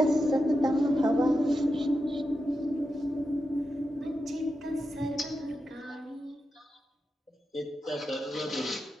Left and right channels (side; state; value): both; normal; correlation 0.89